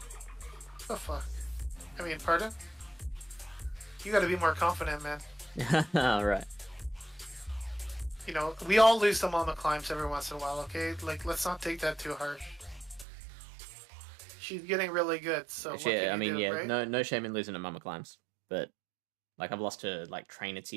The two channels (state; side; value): drops out; left; at 13.1 s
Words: The fuck? I mean, pardon? You gotta be more confident, man. Alright. You know, we all lose to Mamaclimbs every once in a while, okay? Like, let's not take that too harsh. She's getting really good, so what yeah, can I mean, you do, yeah, right? no shame in losing to Mamaclimbs, but like I've lost to like trainer